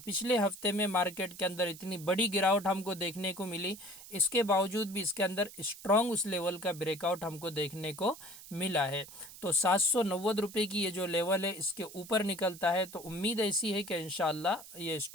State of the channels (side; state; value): right; noise; hiss, 16 dB below the sound